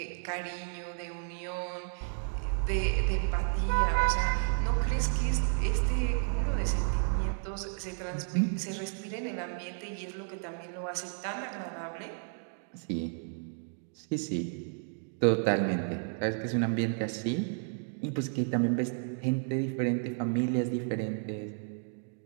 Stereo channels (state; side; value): silent; left; 56 dB below the other